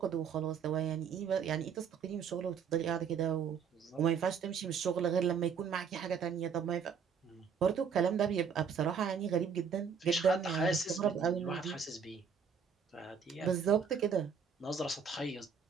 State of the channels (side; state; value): left; quieter; 6.5 dB